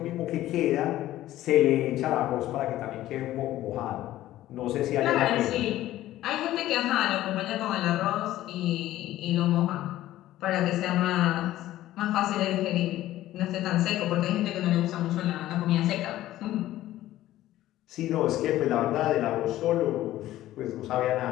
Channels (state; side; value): quieter; right; 14.5 dB